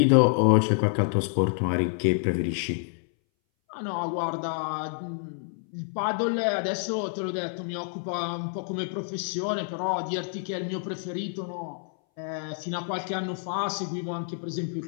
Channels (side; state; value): right; silent; 59 dB below the other